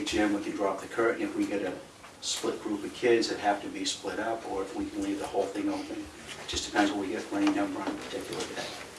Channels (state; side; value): identical; both; correlation 1.00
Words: gym. We can drop the curtain if we get a split group of kids that have to be split up, or if we can leave the whole thing open. It just depends what we get for any number on a particular